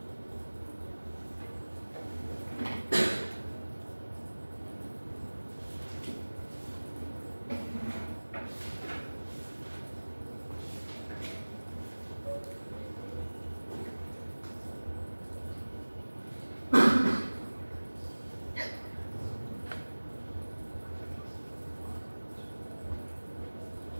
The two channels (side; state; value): both; inverted; correlation -1.00